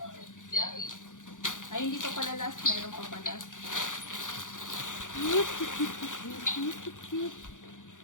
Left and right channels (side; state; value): right; late; 0.87 ms